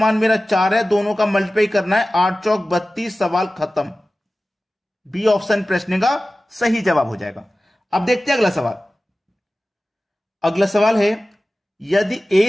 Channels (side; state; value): both; normal; correlation 0.96